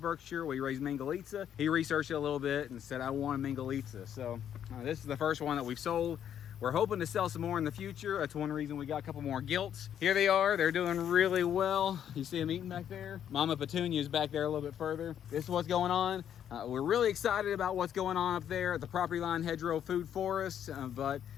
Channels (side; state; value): right; quieter; 9.6 dB